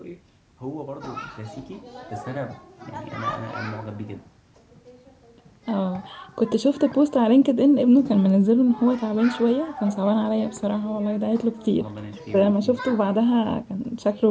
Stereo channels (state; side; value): identical; both; correlation 1.00